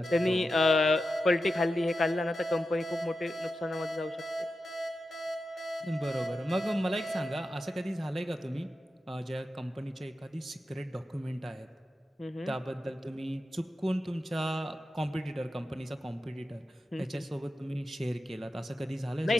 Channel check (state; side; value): normal; both; correlation 0.91